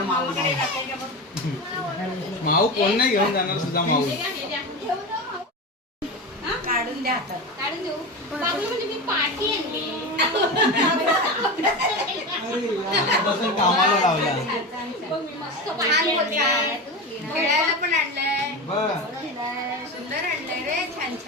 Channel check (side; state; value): both; normal; correlation 0.23